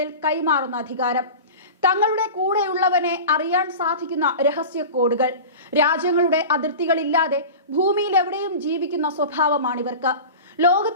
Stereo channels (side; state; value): both; inverted; correlation -0.32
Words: കൈമാറുന്ന അധികാരം. തങ്ങളുടെ കൂടെയുള്ളവനെ അറിയാൻ സാധിക്കുന്ന രഹസ്യ കോഡുകൾ. രാജ്യങ്ങളുടെ അതിർത്തികളില്ലാതെ ഭൂമിയിൽ എവിടെയും ജീവിക്കുന്ന സ്വഭാവമാണിവർക്ക്.